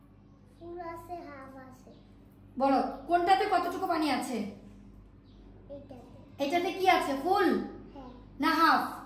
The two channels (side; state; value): both; identical; correlation 1.00